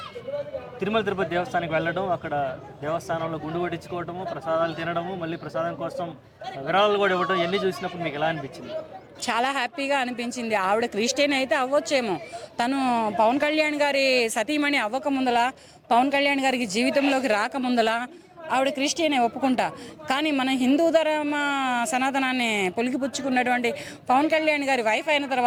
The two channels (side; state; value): both; identical; correlation 1.00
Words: తిరుమల తిరుపతి దేవస్థానానికి వెళ్ళడం, అక్కడ దేవస్థానంలో గుండు కొట్టించుకోవడము, ప్రసాదాలు తినడము, మళ్ళీ ప్రసాదం కోసం విరాళాలు కూడా ఇవ్వడం, ఇవన్నీ చూసినప్పుడు మీకు ఎలా అనిపించింది? చాలా హ్యాపీగా అనిపించింది. ఆవిడ క్రిస్టియన్ అయితే అవ్వచ్చేమో, తను పవన్ కళ్యాణ్ గారి సతీమణి అవ్వక ముందల, పవన్ కళ్యాణ్ గారికి జీవితంలోకి రాకముందల ఆవిడ క్రిస్టియనే ఒప్పుకుంటా. కానీ మన హిందూ ధర్మ సనాతనాన్ని పొలికిపుచ్చుకున్నటువంటి పవన్ కళ్యాణ్ గారి వైఫ్ అయిన